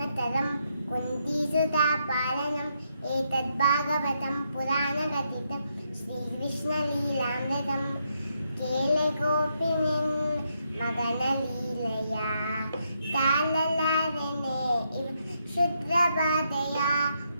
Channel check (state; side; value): inverted; both; correlation -0.79